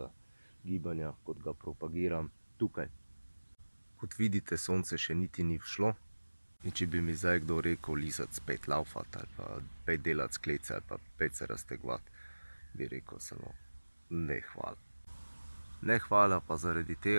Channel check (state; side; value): inverted; both; correlation -1.00